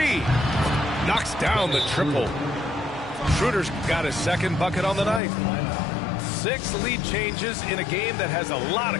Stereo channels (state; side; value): drops out; right; at 5.2 s